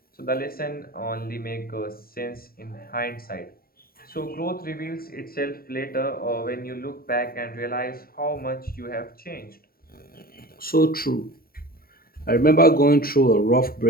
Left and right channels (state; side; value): late; right; 0.43 ms